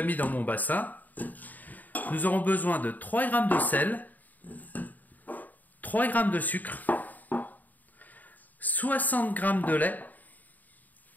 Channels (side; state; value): right; late; 0.082 ms